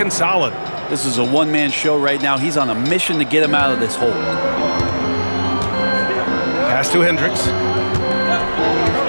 solid. This is a one-man show right now. He's on a mission to get him out of this hole. Pass to Hendricks.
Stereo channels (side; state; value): both; inverted; correlation -1.00